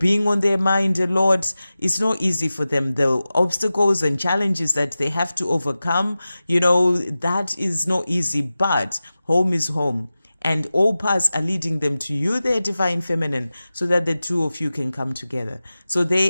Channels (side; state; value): both; inverted; correlation -0.95